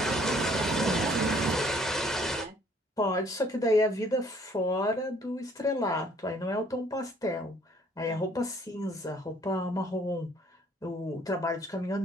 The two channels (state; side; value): normal; both; correlation 0.61